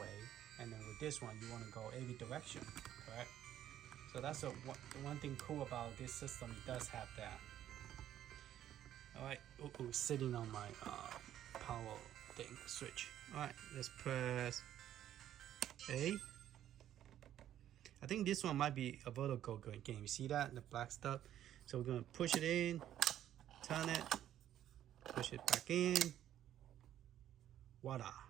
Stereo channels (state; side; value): quieter; left; 11.5 dB